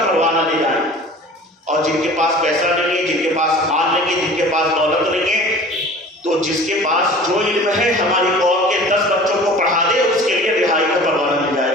پروانہ لے جائیں. اور جن کے پاس پیسہ نہیں ہے، جن کے پاس مال نہیں ہے، جن کے پاس دولت نہیں ہے، تو جس کے پاس جو علم ہے ہماری قوم کے 10 بچوں کو پڑھا دے، اس کے لیے رہائی کا پروانہ مل جائے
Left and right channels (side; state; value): both; normal; correlation 0.43